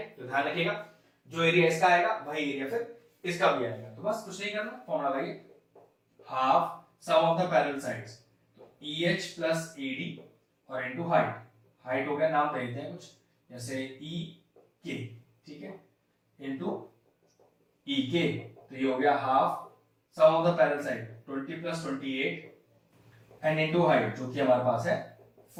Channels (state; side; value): identical; both; correlation 1.00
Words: तो ध्यान रखिएगा जो एरिया इसका आएगा वही एरिया फिर इसका भी आएगा। तो बस कुछ नहीं करना, फॉर्मूला लगाइए, half sum of the parallel sides, तो EH प्लस AD और इनटू हाइट हो गया, नाम दे देते हैं कुछ जैसे EK, ठीक है, इनटू EK, तो ये हो गया half sum of the parallel side 20 plus 28 and into height जो कि हमारे पास है